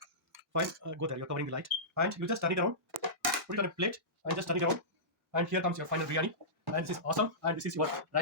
Fine, go there. You're covering the light, and you just turn it around. Put it on a plate and just turn it around. And here comes your final biryani. And this is awesome. And this is your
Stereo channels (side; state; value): both; normal; correlation -0.19